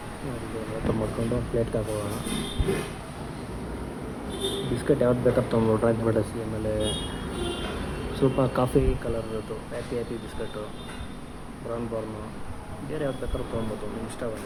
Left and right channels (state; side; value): identical; both; correlation 1.00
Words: ಓಪನ್ ಮಾಡಿಕೊಂಡು ಪ್ಲೇಟ್ಗೆ ಹಾಕೋಣ. ಬಿಸ್ಕೆಟ್ ಯಾವ್ದು ಬೇಕಾದ್ರೆ ತೊಗೊಂಡು ಡ್ರಾಯಿಂಗ್ ಫ್ಯಾಂಟಸಿ, ಆಮೇಲೆ ಸ್ವಲ್ಪ ಕಾಫಿ ಕಲರ್ದು ಹ್ಯಾಪಿ ಬಿಸ್ಕಟ್ಟು, ಬ್ರೌನ್ ಬಾರ್ನು, ಬೇರೆ ಯಾವ್ದು ಬೇಕಾದ್ರೂ ತೊಗೊಬೋದು, ನಿಮ್ಗೆ